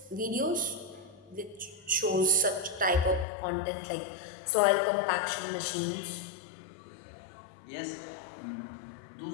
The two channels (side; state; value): right; drops out; at 3.2 s